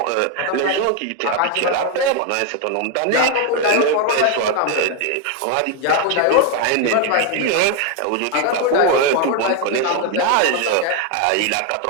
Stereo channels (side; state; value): both; different; correlation 0.01